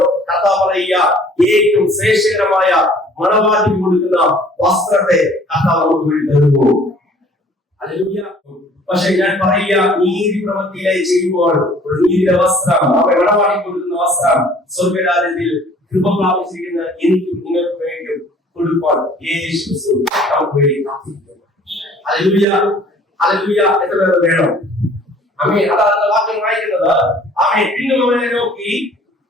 കർത്താവ് പറയുക, ഏറ്റവും ശ്രേഷ്ഠകരമായ മണവാട്ടി കൊടുക്കുന്ന വസ്ത്രത്തെ കർത്താവ് നമുക്ക് വേണ്ടി തരുന്നു. ഹല്ലേലൂയ. പക്ഷെ ഞാൻ പറയുക, നീതി പ്രവൃത്തിയിലായി ചെയ്യുമ്പോൾ ഒരു നീതിയുടെ വസ്ത്രം, മണവാട്ടി കൊടുക്കുന്ന വസ്ത്രം സ്വർഗ്ഗരാജ്യത്തിൽ കൃപ പ്രാപിച്ചിരിക്കുന്ന എനിക്കും നിങ്ങൾക്കും വേണ്ടിയും கொடுப்பான். இயேசு கிறிஸ்து நமக்கு வேண்டி காத்திருக்கிறார். ஹல்லேலூயா, ஹல்லேலூயா. எத்தனை பேர் வேணும்? ஆமென். அதான் அந்த வாக்கியம் வாയിക്കുന്നത്. ஆமென். பின்னும் அவனை നോക്കി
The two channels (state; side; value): normal; both; correlation 0.54